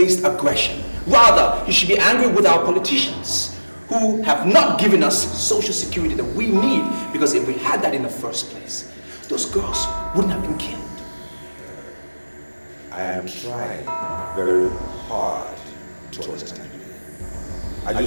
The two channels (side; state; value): both; inverted; correlation -1.00